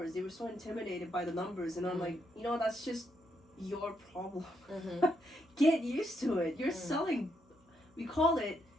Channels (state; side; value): normal; both; correlation 0.77